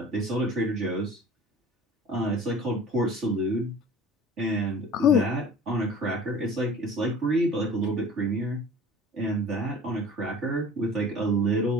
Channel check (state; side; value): normal; both; correlation 0.43